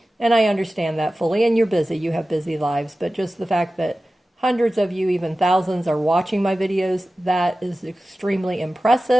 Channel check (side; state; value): both; normal; correlation 0.95